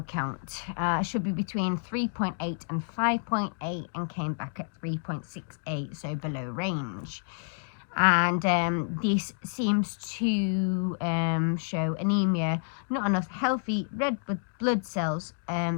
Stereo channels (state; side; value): silent; right; digital silence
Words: count should be between 3.8 and 5.8 and came back at 3.68, so below range. And this seems to show anemia, not enough healthy red blood cells